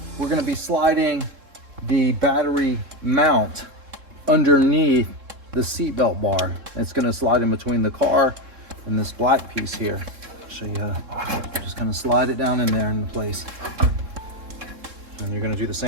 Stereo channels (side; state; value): left; late; 3.7 ms